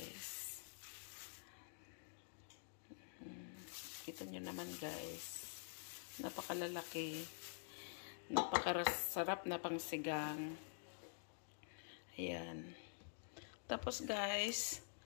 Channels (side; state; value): right; silent; digital silence